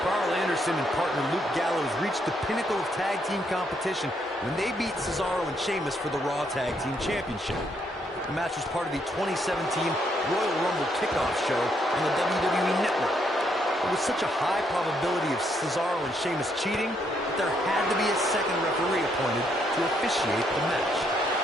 Carl Anderson and partner Luke Gallows reached the pinnacle of tag team competition when they beat Cesaro and Sheamus for the Raw Tag Team Championship. The match was part of the 2017 Royal Rumble kickoff show on the WWE Network. There was such a high probability of Cesaro and Sheamus cheating that there had to be a second referee appointed to officiate the match.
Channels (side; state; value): both; normal; correlation 0.74